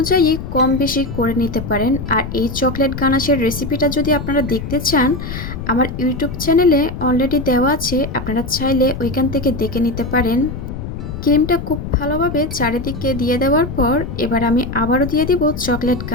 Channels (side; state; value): left; noise; rumble, 7 dB below the sound